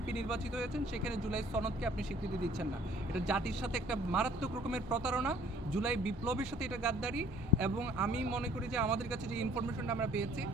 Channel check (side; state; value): both; normal; correlation 0.57